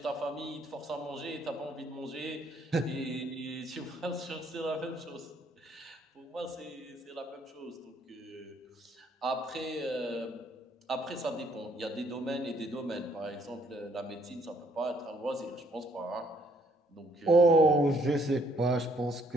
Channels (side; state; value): both; normal; correlation 0.66